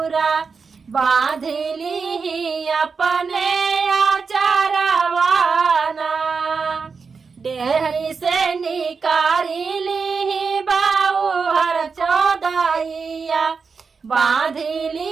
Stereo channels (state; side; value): quieter; left; 5.2 dB